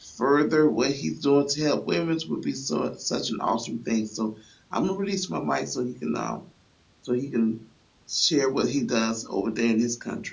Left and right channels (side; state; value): both; identical; correlation 1.00